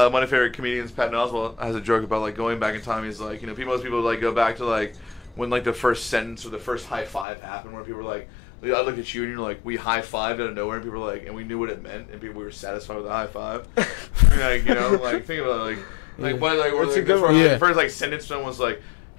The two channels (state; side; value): drops out; right; at 7.2 s